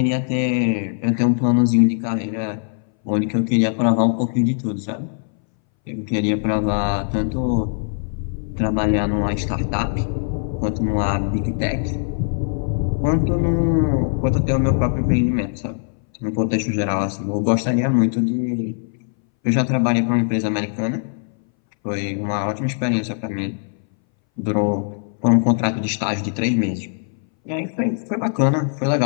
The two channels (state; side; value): silent; right; 62 dB below the other